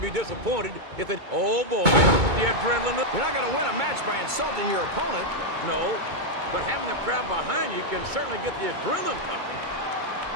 be disappointed if they... Oh, boy, the adrenaline... You're not going to win a match by insulting your opponent. No, but having the crowd behind you can certainly get the adrenaline pumping.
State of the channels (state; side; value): late; left; 2.2 ms